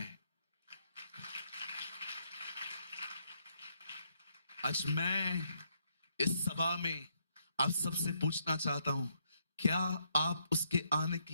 आज मैं इस सभा में आप सबसे पूछना चाहता हूं, क्या आप उसके आने के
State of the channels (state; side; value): inverted; both; correlation -0.75